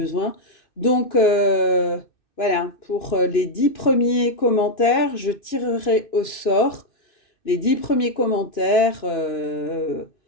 Donc, voilà, pour les 10 premiers commentaires, je tirerai au sort les 10 premiers commentaires.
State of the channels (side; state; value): right; late; 2.6 ms